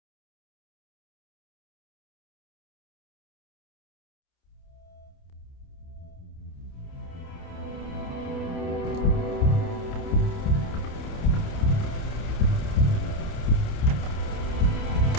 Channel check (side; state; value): right; late; 28 ms